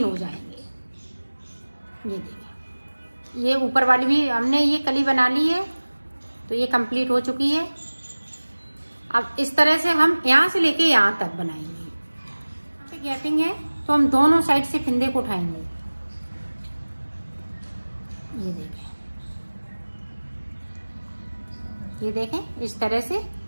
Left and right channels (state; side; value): inverted; both; correlation -1.00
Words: हो जाएंगे। ये देखें, ये ऊपर वाली भी हमने ये कली बना ली है, तो ये कंप्लीट हो चुकी है। अब इस तरह से हम यहाँ से लेके यहाँ तक बनाएंगे। यहाँ पे गैपिंग है, तो हम दोनों साइड से फिंदे को उठाएंगे। ये देखें, ये देखें इस तरह से,